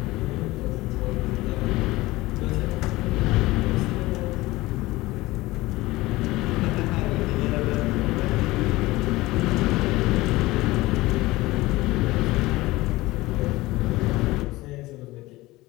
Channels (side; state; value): right; quieter; 19.4 dB